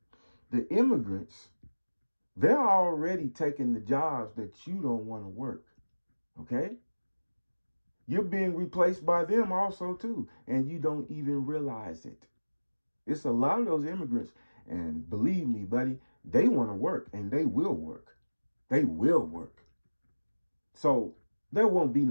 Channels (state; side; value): inverted; both; correlation -1.00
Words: The immigrants, they're already taking the jobs that you don't want to work, okay? You're being replaced by them also, too, and you don't even realize it. It's a lot of those immigrants, and believe me, buddy, they want to work, and they will work. They will work. So there won't be